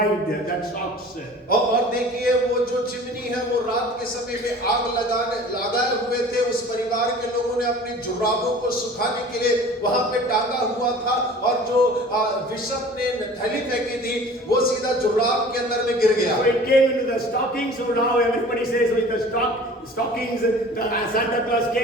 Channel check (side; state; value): both; normal; correlation 0.44